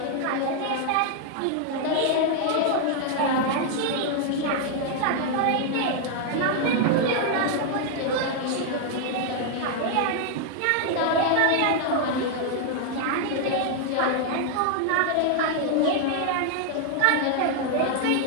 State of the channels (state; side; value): different; both; correlation 0.00